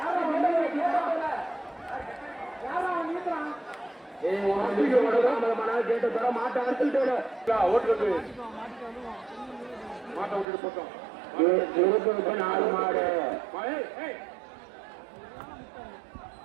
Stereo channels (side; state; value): left; drops out; at 10.5 s